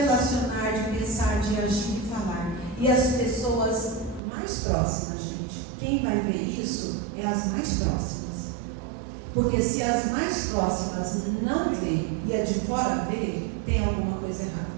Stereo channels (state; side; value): drops out; left; at 4.2 s